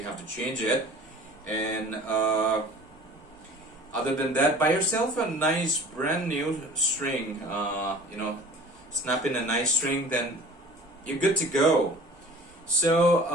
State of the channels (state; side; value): normal; both; correlation 0.45